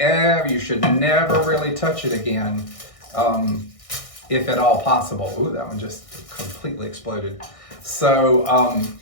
should never really touch it again, if at all possible. Ooh, that one just completely exploded. So I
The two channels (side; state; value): right; late; 1.6 ms